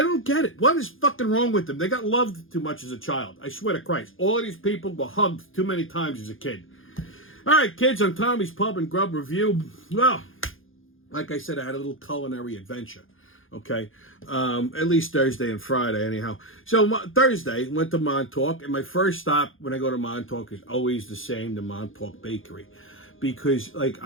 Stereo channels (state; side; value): late; right; 0.59 ms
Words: don't get it. What is fucking wrong with them? They got loved too much as a child. I swear to Christ. All of these people were hugged too many times as a kid. All right, kids, on Tommy's Pub and Grub Review. Well, like I said, I had a little culinary adventure. Okay, at least Thursday and Friday, anyhow. So Thursday, went to Montauk, and my first stop when I go to Montauk is always the same, the Montauk Bakery. Because, like,